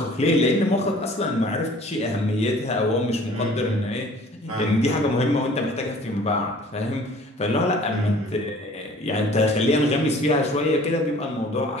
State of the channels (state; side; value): normal; both; correlation 0.51